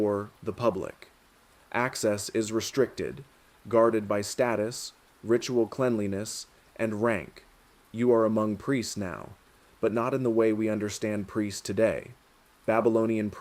the public. Access is restricted, guarded by status, ritual cleanliness, and rank. You are among priests now, but not in the way we understand priests today. Babylonian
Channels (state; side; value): identical; both; correlation 1.00